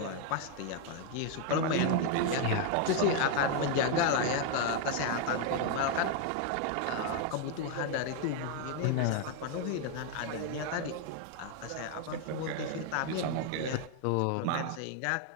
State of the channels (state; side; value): different; both; correlation 0.00